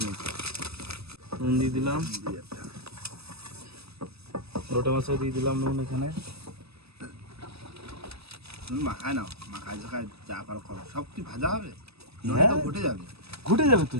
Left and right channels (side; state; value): left; late; 0.78 ms